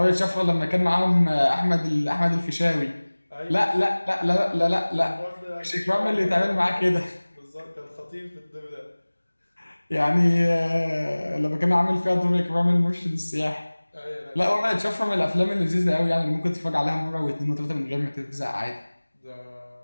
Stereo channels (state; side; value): inverted; both; correlation -1.00